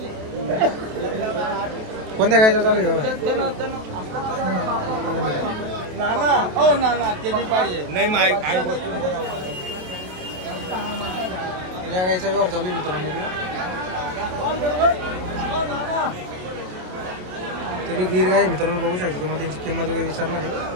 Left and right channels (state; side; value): late; left; 27 ms